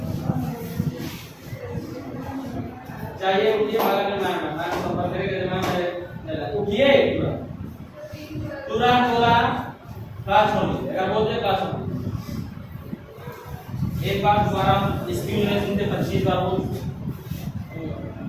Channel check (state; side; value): identical; both; correlation 1.00